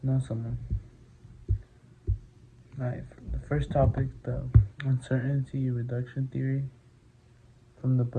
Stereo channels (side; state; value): both; identical; correlation 1.00